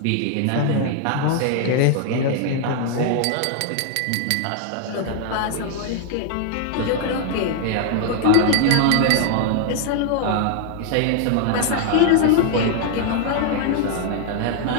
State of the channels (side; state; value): both; different; correlation 0.00